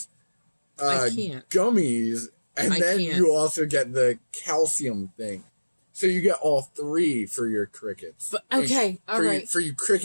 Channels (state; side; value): inverted; both; correlation -1.00